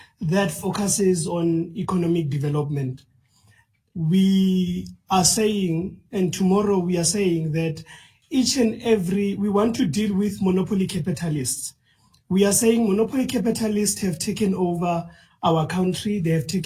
that focuses on economic development. We are saying, and tomorrow we are saying that we want to deal with monopoly capitalists. We are saying monopoly capitalists have taken over our country, they have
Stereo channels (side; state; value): both; identical; correlation 1.00